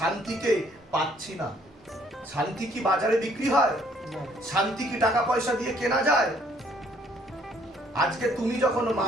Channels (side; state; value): both; normal; correlation 0.63